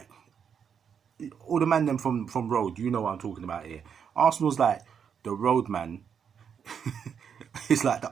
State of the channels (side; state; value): left; quieter; 7.4 dB